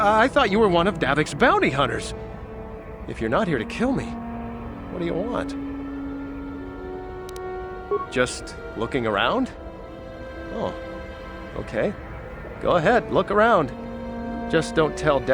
thought you were one of Davik's bounty hunters. If you're not here to kill me, what do you want? Just looking around? Oh, okay. Go ahead, look around. Just don't tell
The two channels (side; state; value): both; identical; correlation 1.00